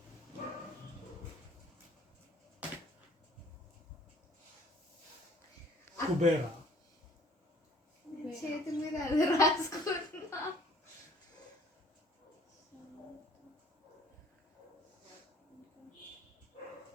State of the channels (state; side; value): normal; both; correlation 0.56